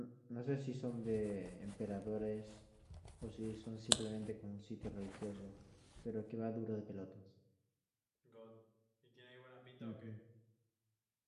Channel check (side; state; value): both; identical; correlation 1.00